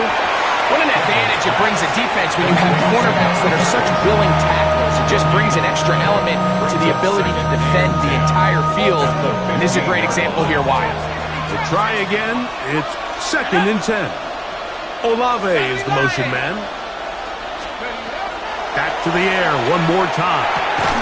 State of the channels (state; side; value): identical; both; correlation 1.00